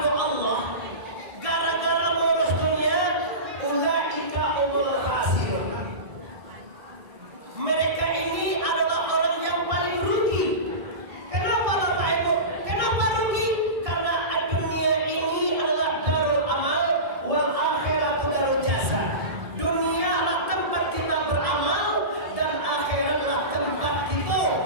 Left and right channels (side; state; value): left; late; 1.6 ms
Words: Allah gara-gara mengurus dunia, ulaika umul khasirun. Mereka ini adalah orang yang paling rugi. Kenapa Bapak Ibu? Kenapa rugi? Karena dunia ini adalah darul amal, wal akhiratu darul jasa. Dunia adalah tempat kita beramal dan akhiratlah tempat kita